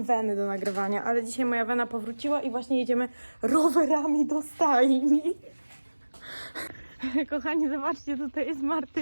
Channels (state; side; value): inverted; both; correlation -1.00